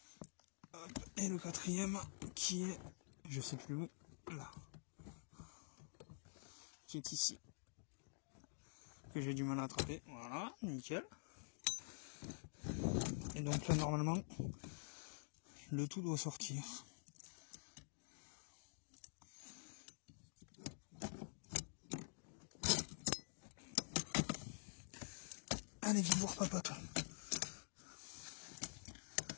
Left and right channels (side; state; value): right; silent; digital silence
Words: Et le 4e qui est, je sais plus où, là, qui est ici, que j'ai du mal à attraper. Voilà, nickel. Et donc là, normalement, le tout doit sortir. Allez, viens voir papa, toi.